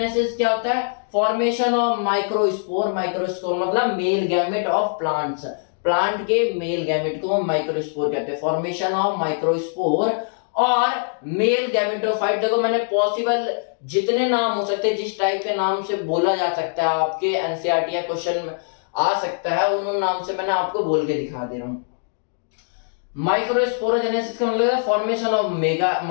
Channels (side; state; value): right; silent; digital silence